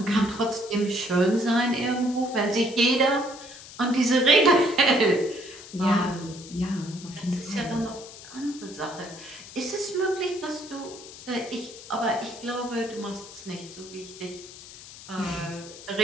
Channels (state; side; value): noise; left; hiss, 16 dB below the sound